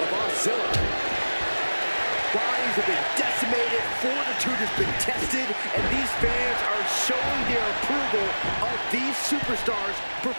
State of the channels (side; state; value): both; inverted; correlation -1.00